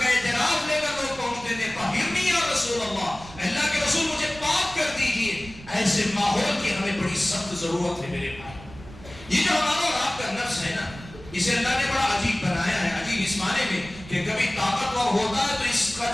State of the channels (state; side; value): noise; right; rumble, 17 dB below the sound